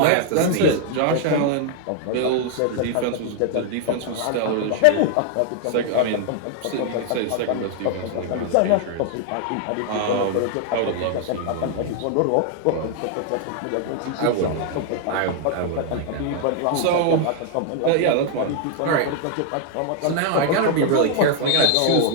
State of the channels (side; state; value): both; different; correlation 0.00